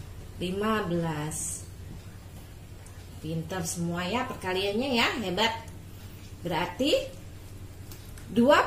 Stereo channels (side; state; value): both; identical; correlation 1.00